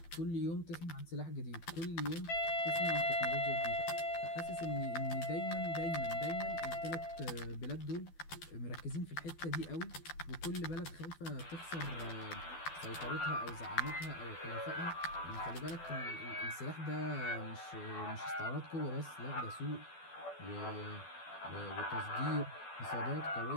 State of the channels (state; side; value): late; right; 12 ms